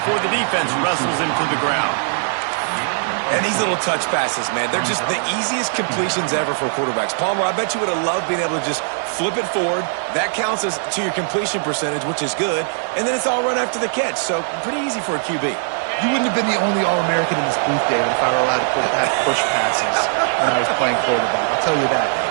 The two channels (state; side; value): silent; left; digital silence